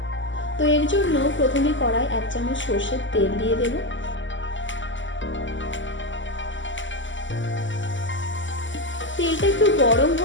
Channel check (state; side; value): late; right; 0.55 ms